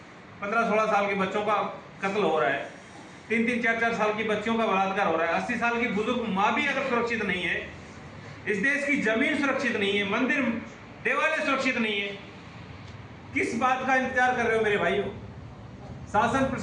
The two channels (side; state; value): both; identical; correlation 1.00